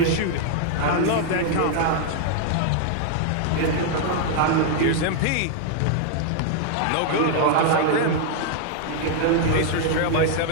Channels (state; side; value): different; both; correlation 0.00